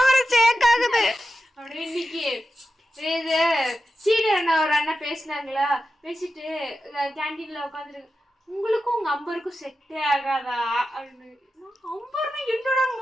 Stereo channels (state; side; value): normal; both; correlation 0.91